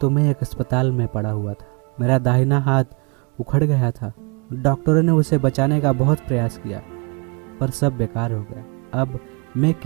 मैं एक अस्पताल में पड़ा हुआ था। मेरा दाहिना हाथ उखड़ गया था। डॉक्टरों ने उसे बचाने का बहुत प्रयास किया पर सब बेकार हो गया। अब मैं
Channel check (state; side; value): quieter; left; 32.4 dB